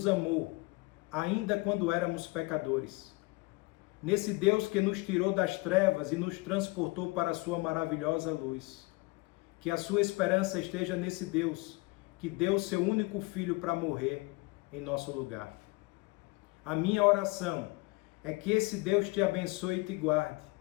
amou, ainda quando éramos pecadores, nesse Deus que nos tirou das trevas e nos transportou para a sua maravilhosa luz. Que a sua esperança esteja nesse Deus que deu seu único filho para morrer em nosso lugar. A minha oração é que esse Deus te abençoe e te guarde.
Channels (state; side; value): quieter; right; 25.0 dB